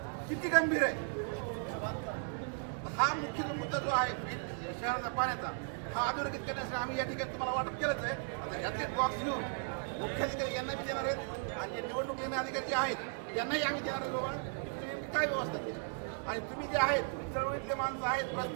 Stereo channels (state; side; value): silent; left; 54 dB below the other